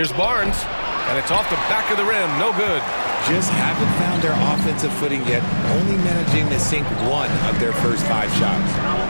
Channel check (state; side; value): inverted; both; correlation -1.00